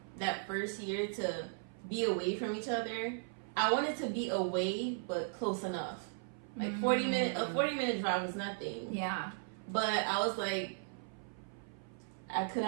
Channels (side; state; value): left; silent; 53 dB below the other